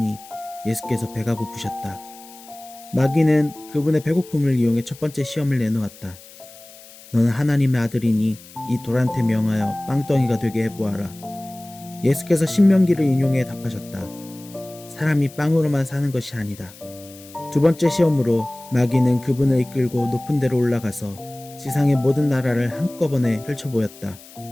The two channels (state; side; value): noise; left; hiss, 20 dB below the sound